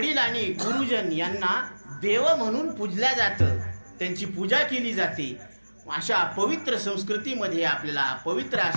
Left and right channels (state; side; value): inverted; both; correlation -1.00